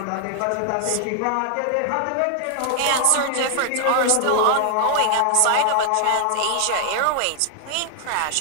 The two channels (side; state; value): both; different; correlation 0.00